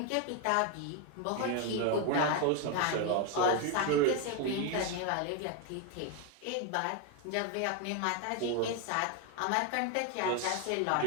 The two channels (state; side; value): different; both; correlation 0.01